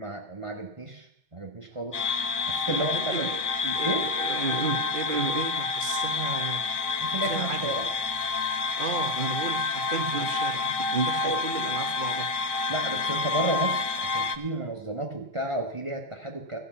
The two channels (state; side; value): late; left; 1.2 ms